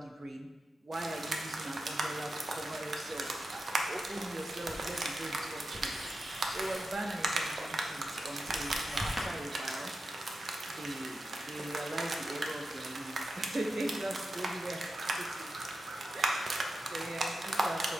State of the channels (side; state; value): both; normal; correlation 0.90